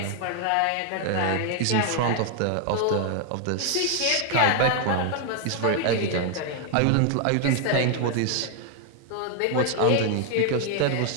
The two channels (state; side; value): different; both; correlation 0.00